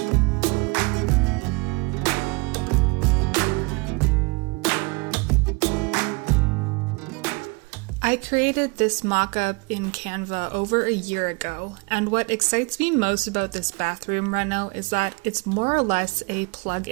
I created this mock-up in Canva over a year ago, and what excites me most about this bathroom reno is that it's more or less a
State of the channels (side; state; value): left; quieter; 28.7 dB